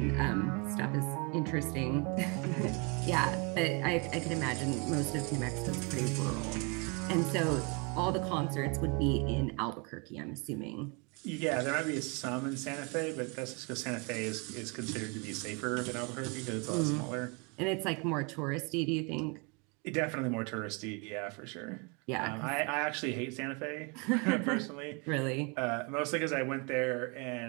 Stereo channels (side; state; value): left; quieter; 31.0 dB